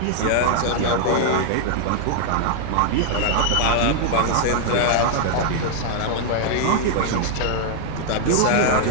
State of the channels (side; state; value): both; different; correlation -0.01